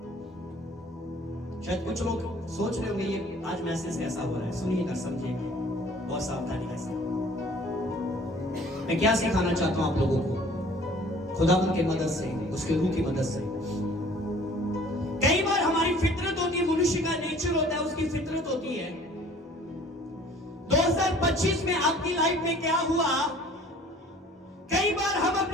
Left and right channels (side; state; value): both; normal; correlation 0.52